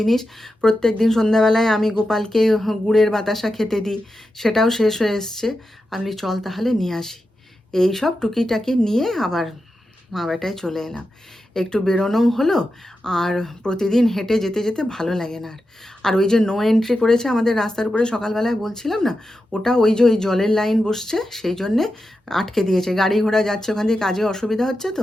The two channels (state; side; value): normal; both; correlation 0.89